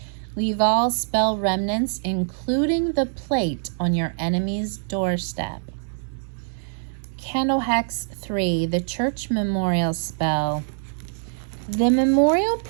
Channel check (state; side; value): silent; left; digital silence